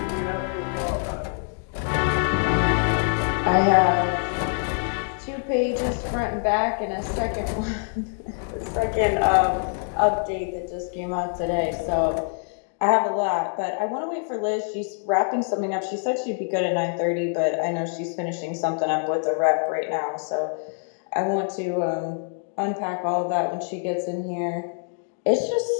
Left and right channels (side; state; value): right; silent; 62 dB below the other